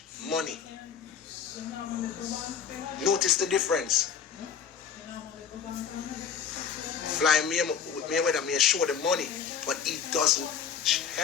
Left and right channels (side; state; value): right; quieter; 7.3 dB